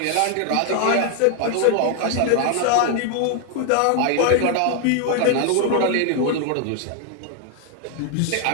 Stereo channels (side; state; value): both; different; correlation 0.00